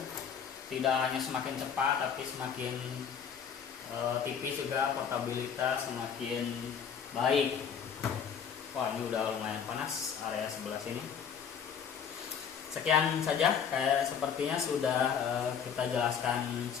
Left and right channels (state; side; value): quieter; right; 7.4 dB